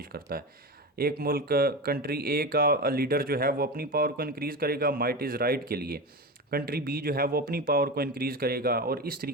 करता है। एक मुल्क, कंट्री ए का लीडर जो है वो अपनी पावर को इंक्रीज़ करेगा माइट इज़ राइट के लिए, कंट्री बी जो है वो अपनी पावर को इंक्रीज़ करेगा और इस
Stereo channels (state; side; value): normal; both; correlation 0.23